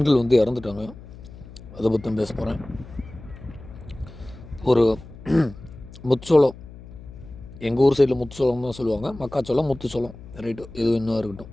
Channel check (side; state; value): left; noise; hum, 17 dB below the sound